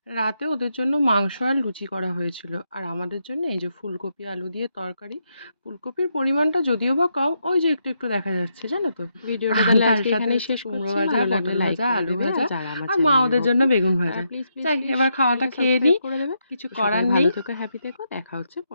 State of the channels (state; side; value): inverted; both; correlation -0.80